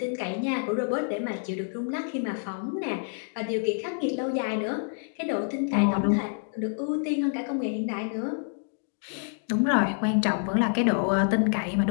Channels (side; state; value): right; silent; digital silence